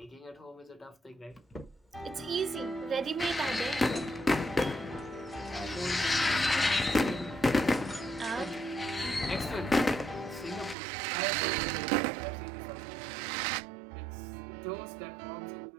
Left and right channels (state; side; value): drops out; left; at 10.8 s